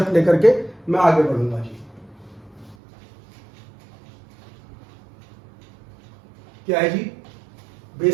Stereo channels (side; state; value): left; drops out; at 2.8 s